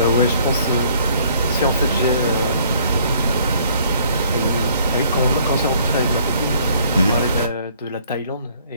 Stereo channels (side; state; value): both; inverted; correlation -0.61